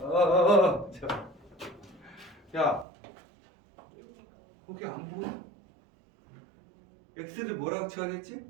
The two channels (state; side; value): drops out; left; at 2.9 s